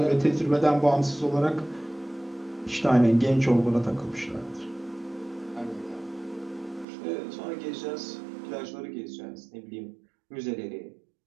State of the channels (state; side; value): drops out; left; at 6.9 s